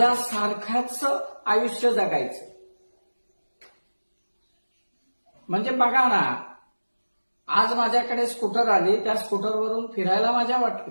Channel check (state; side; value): inverted; both; correlation -1.00